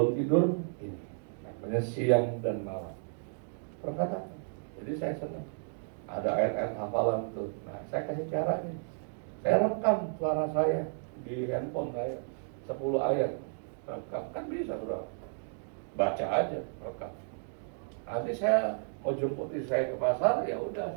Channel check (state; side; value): silent; left; digital silence